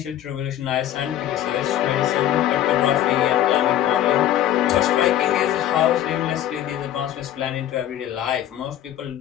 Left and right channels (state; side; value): quieter; right; 12.0 dB